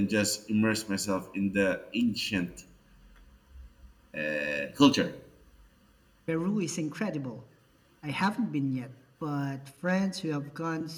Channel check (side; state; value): both; identical; correlation 1.00